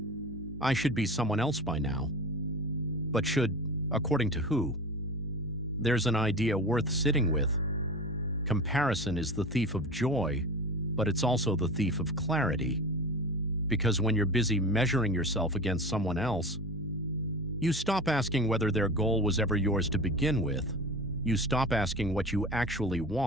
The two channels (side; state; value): both; normal; correlation 0.32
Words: I should be someone else by now. But should, according to who? There's an idea worth sitting with. Comparison is the thief of joy, but it's also the thief of clarity. Because when you're busy measuring yourself against someone else, you stop asking whether their goal was ever yours to begin with. You stop asking what you actually